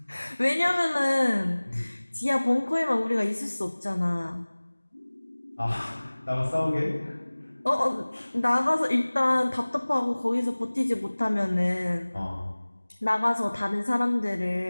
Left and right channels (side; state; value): both; inverted; correlation -1.00